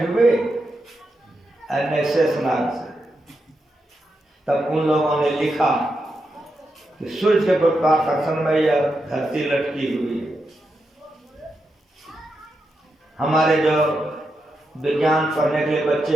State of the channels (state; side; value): normal; both; correlation 0.86